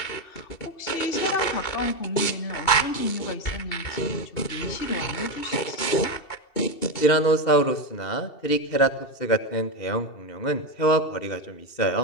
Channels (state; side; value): late; right; 2.7 ms